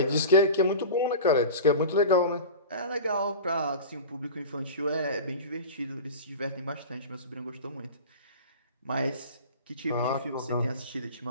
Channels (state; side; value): inverted; both; correlation -0.33